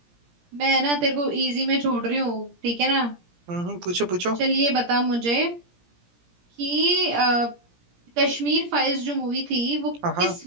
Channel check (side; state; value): left; late; 17 ms